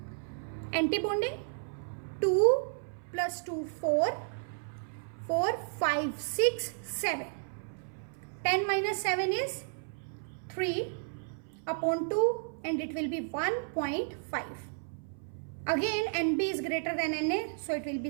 Anti-bonding, 2 plus 2, 4, 4, 5, 6, 7. 10 minus 7 is 3 upon 2, and it will be 1.5. Again NB is greater than Na, so it will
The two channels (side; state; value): left; silent; 56 dB below the other